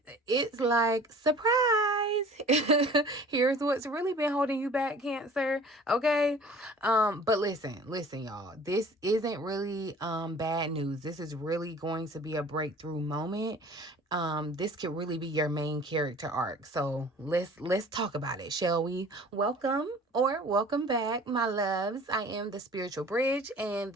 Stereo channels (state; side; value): normal; both; correlation 0.47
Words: it's like, surprise. Here's what's really been holding you back, Cancer. Okay. But listen, y'all. This isn't really bad news. This is really going to be a breakthrough moment. This could really be your main character arc. So let's talk about it, shall we? Welcome back, my loves. I am the Spiritual Bridge, and